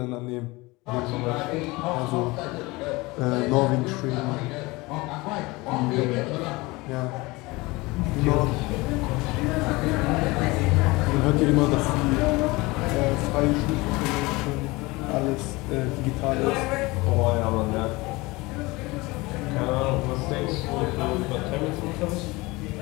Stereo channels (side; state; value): right; quieter; 22.7 dB